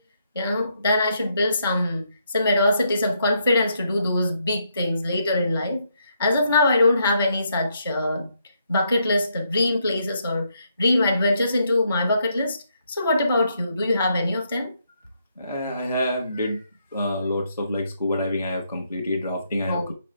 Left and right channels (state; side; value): inverted; both; correlation -0.76